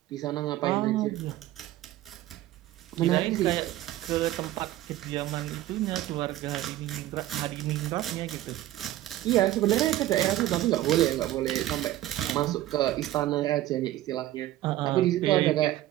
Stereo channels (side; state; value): left; quieter; 14.7 dB